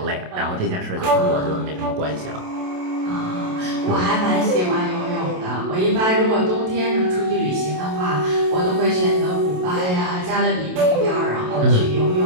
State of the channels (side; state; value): left; late; 27 ms